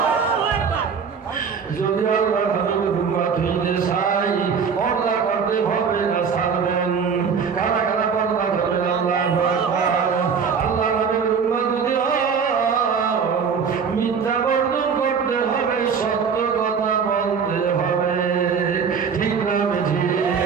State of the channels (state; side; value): quieter; left; 6.2 dB